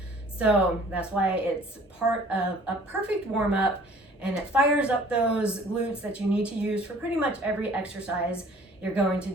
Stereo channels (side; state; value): both; normal; correlation 0.52